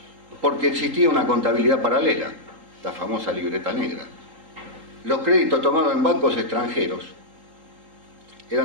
Porque existía una contabilidad paralela, la famosa libreta negra. Los créditos tomados en bancos extranjeros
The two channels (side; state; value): left; late; 3.8 ms